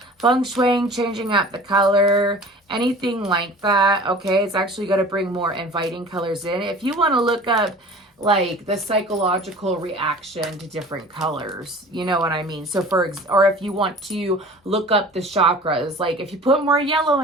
Feng shuiing, changing up the color, anything like that, okay? It's actually going to bring more inviting colors in. If you want to look up like the psychological reaction to different colors, you know what I mean? So or if you want to look up the chakras, like if you put more yellow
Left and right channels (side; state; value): both; normal; correlation 0.42